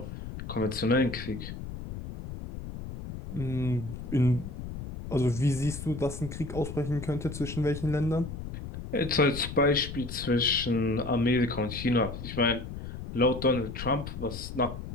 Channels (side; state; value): left; noise; rumble, 9 dB below the sound